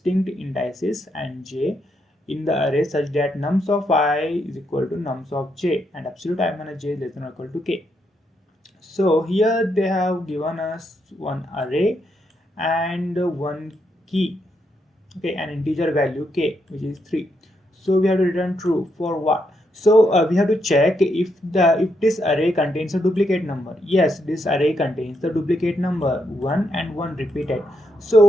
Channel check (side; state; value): both; normal; correlation 0.79